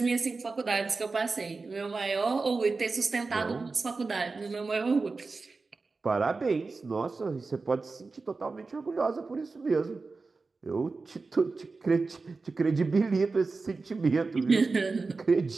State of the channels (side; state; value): left; quieter; 4.0 dB